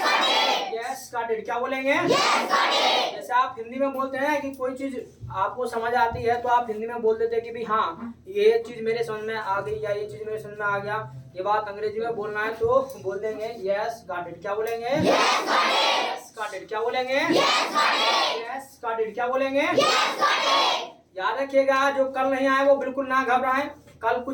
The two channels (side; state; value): both; identical; correlation 1.00